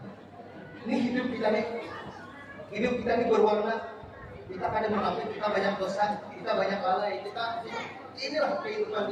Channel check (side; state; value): both; identical; correlation 1.00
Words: Ini hidup kita nih. Hidup kita ini berwarna. Kita kadang mengaku kita banyak dosa, kita banyak lalai, kita inilah kehidupan